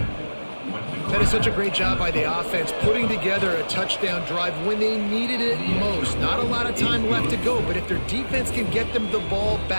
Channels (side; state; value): both; inverted; correlation -1.00